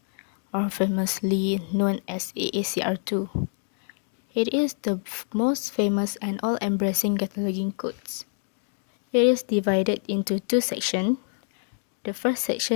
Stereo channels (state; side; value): silent; right; digital silence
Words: or famously known as AACR2. It is the most famous and all-embracing cataloging codes. It is divided into two sections. The first